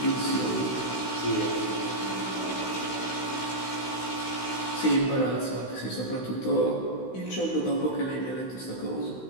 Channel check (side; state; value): right; late; 16 ms